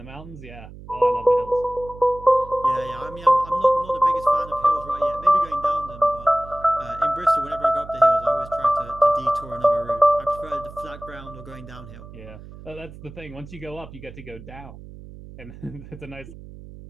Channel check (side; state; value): right; noise; hum, 16 dB below the sound